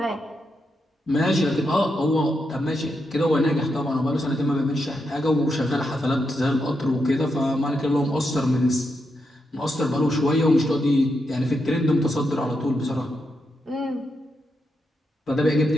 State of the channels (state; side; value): normal; both; correlation 0.84